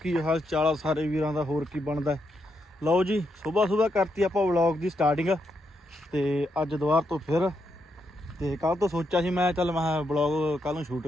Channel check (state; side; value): normal; both; correlation 0.81